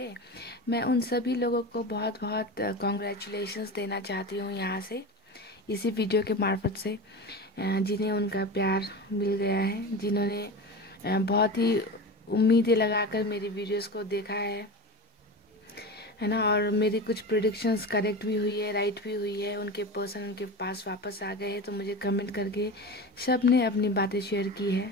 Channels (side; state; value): both; normal; correlation 0.27